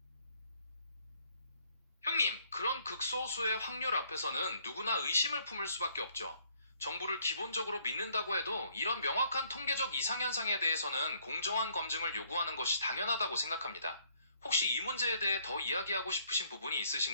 형님, 그런 극소수의 확률 앞에서는 누구나 의심을 품을 수밖에 없죠. 정부를 기본적으로 믿는다고 해도 이런 명확한 통계적 이상현상에 대해서는 공정한 검증을 요구하는 것이 당연하다고 생각합니다. 혹시 이 문제에 대해 더 이야기하고 싶으신 부분이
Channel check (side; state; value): both; inverted; correlation -0.66